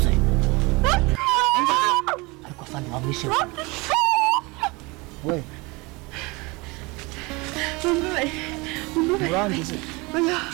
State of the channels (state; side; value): quieter; left; 25.3 dB